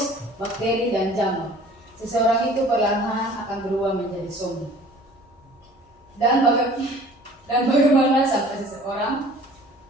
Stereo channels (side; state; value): both; normal; correlation 0.49